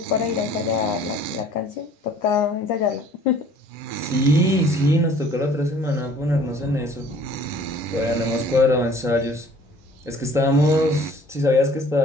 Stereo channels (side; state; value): both; normal; correlation 0.53